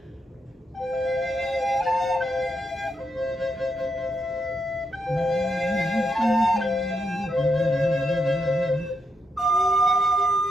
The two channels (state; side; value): normal; both; correlation 0.82